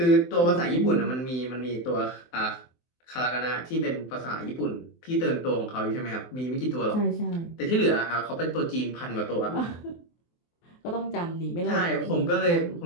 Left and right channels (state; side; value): late; right; 23 ms